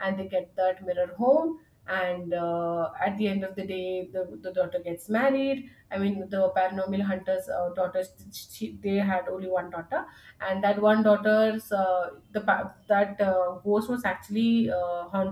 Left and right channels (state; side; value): identical; both; correlation 1.00